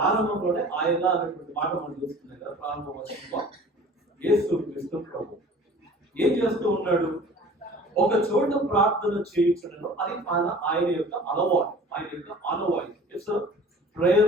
ఆయన అనేటువంటి మాట మనం చూస్తున్నాం కదా. ప్రారంభ వచనంలో యేసు క్రీస్తు ప్రభు ఏం చేస్తూ ఉన్నాడు? ఒక చోట ప్రార్థన చేయించడంలో అది ఆయన యొక్క అలవాటు, ఆయన యొక్క ఆనవాయితీ. ఇట్స్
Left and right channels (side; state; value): both; normal; correlation 0.45